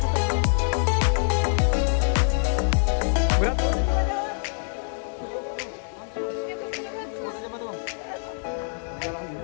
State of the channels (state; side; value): silent; right; digital silence